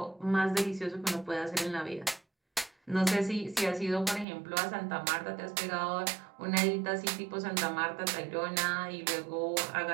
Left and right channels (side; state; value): left; drops out; at 4.2 s